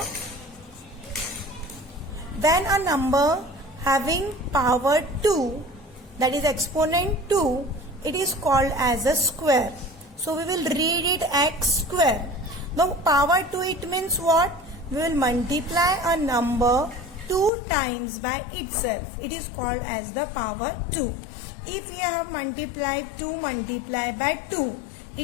When a number having power 2, that is exponent 2, it is called as a square. So we will read it x square. Now power 2, it means what? We will multiply a number 2 times by itself. It is called as the power 2. If we have multiplied 2 multiplied by 2,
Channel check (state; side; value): drops out; right; at 17.5 s